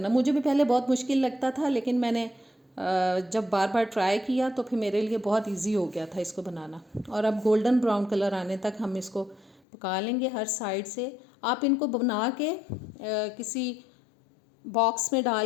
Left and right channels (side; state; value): right; drops out; at 9.6 s